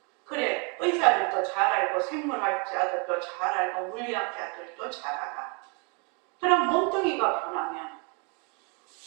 그래, 의사들도 잘 알고 생물학자들도 잘 알고 물리학자들도 잘 알아. 그럼 몸뚱이가 변하면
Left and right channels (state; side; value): quieter; left; 32.8 dB